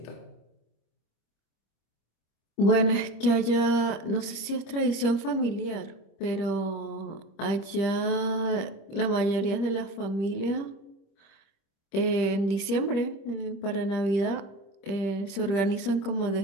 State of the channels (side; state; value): right; late; 25 ms